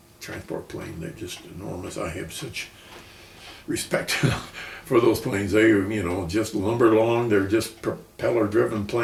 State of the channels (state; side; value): identical; both; correlation 1.00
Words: transport plane. They're just enormous. I have such respect for those planes. They, just lumber along. They're just propeller-driven